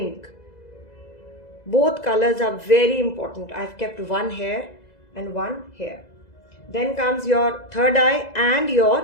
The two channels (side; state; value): right; late; 2.0 ms